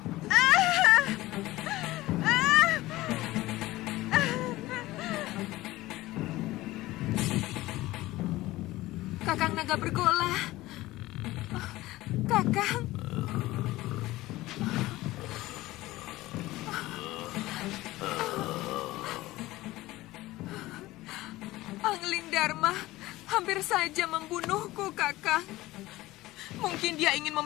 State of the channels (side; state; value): right; quieter; 17.9 dB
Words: Kakang Naga Bergola. Kakang. Dharma hampir saja membunuhku, Kakang. Mungkin dia ingin